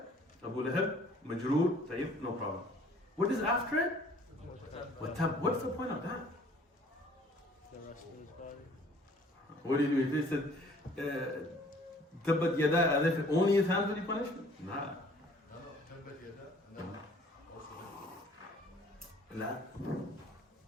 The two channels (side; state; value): both; normal; correlation 0.55